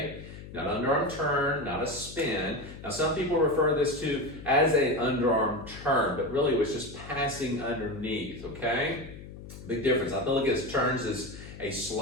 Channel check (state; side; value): noise; left; hum, 14 dB below the sound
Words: Not an underarm turn, not a spin. Now some people refer this to as an underarm turn, but really it was just passing underneath. Okay? Big difference. I look at turns as a